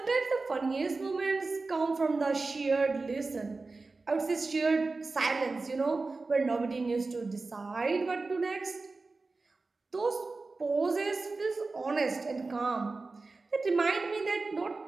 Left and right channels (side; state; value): left; quieter; 3.7 dB